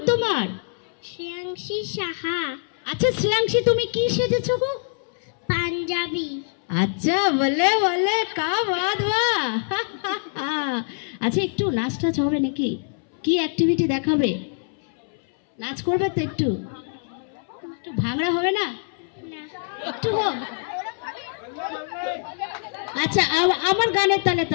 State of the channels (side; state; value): right; silent; 62 dB below the other